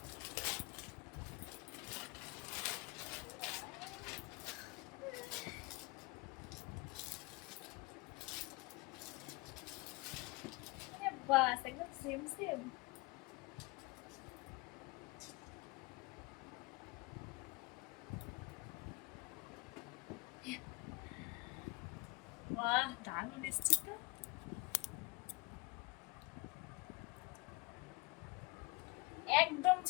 বাস একদম সেম সেম। বাহ দারুণ এসছে তো। একদম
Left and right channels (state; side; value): quieter; right; 25.4 dB